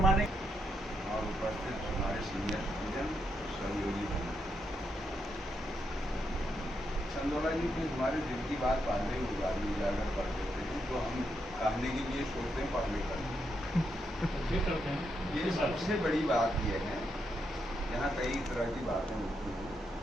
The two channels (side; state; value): both; normal; correlation 0.80